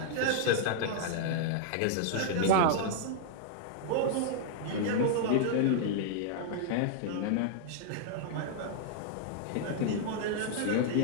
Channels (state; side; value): different; both; correlation -0.01